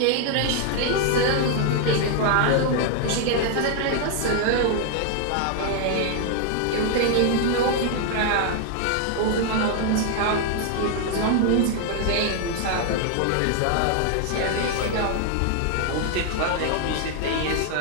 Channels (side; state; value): both; different; correlation 0.00